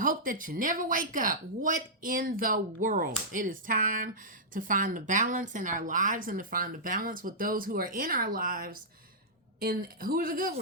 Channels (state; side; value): normal; both; correlation -0.14